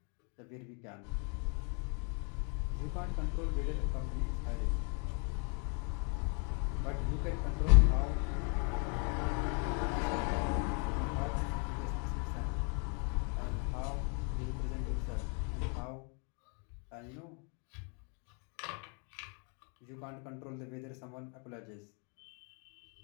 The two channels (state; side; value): quieter; right; 38.1 dB